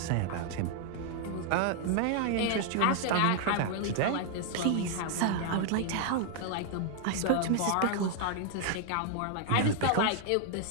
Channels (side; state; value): both; different; correlation 0.00